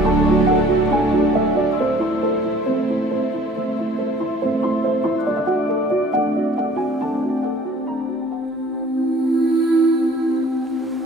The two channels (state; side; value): normal; both; correlation 0.52